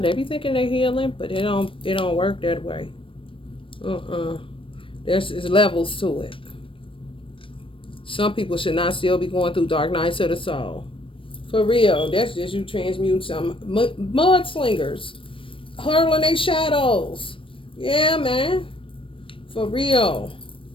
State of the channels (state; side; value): late; right; 0.25 ms